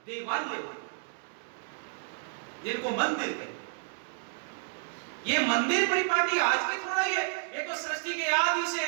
देवालय, जिनको मंदिर कहते हैं। ये मंदिर परिपाटी आज के थोड़ा ही है, ये तो सृष्टि के आदि से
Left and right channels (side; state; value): left; silent; digital silence